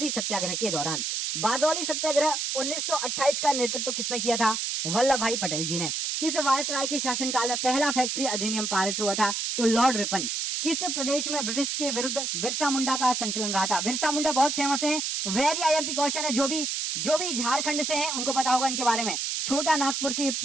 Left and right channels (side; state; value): right; noise; hiss, 1 dB below the sound